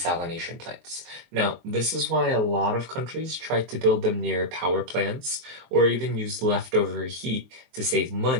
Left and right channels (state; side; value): late; left; 23 ms